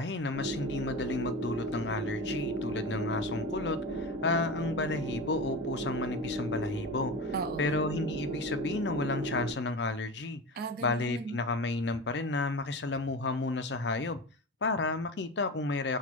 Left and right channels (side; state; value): both; normal; correlation 0.28